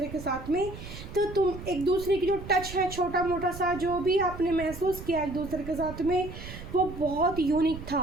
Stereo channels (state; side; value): noise; right; rumble, 12 dB below the sound